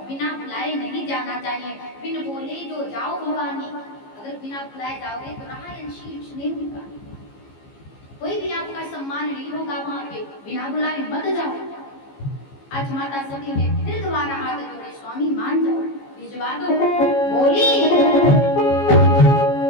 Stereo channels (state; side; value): late; right; 15 ms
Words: बिना बुलाए नहीं जाना चाहिए। बिन बोले जो जाओ भवानी, अगर बिना बुलाए जाओगे तो राह अंशीष नहीं होगा, कोई भी आपका सम्मान नहीं होगा वहां पे। बिना बुलाए मत जाओ। आज माता सती ने फिर दोबारा हाथ जोड़े, स्वामी मान जाओ, भिजवा दो। बोली